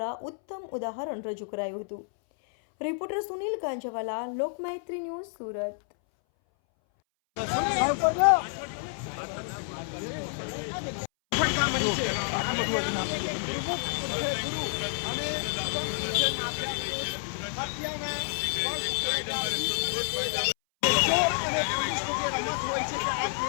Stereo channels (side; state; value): right; silent; 58 dB below the other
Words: ઉત્તમ ઉદાહરણ રજૂ કરાયું હતું। Reporter Sunil Ganjawala, Lokmaitri news, Surat.